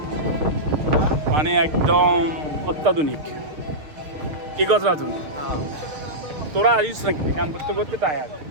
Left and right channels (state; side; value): late; left; 6.5 ms